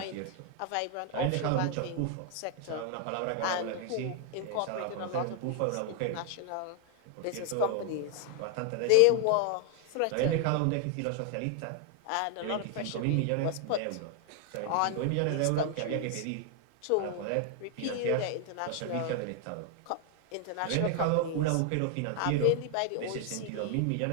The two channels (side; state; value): both; different; correlation 0.00